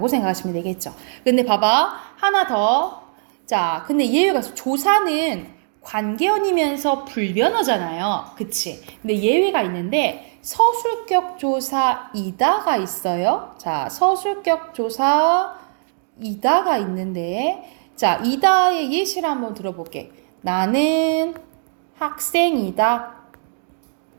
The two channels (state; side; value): silent; left; digital silence